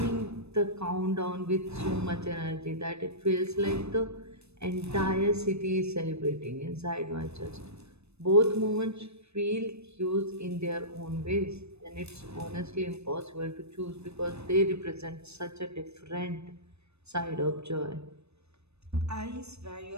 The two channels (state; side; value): late; left; 0.80 ms